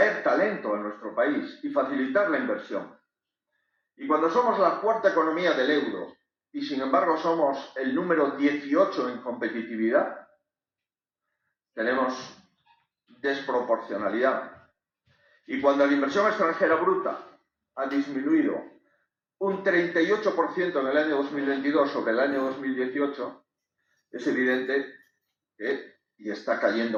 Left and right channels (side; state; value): both; identical; correlation 1.00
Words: talento a nuestro país y facilitar la inversión. Y cuando somos la cuarta economía del euro y sin embargo somos el número 18 en competitividad, tenemos desproporcionalidad. Y cuando la inversión extranjera bruta ha disminuido un 38% en el año 2022 sobre el año 2018, es evidente que, y está